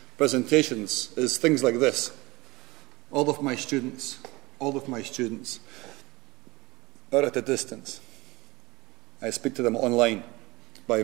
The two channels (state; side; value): quieter; left; 22.1 dB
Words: presentations is things like this. All of my students are at a distance. I speak to them online by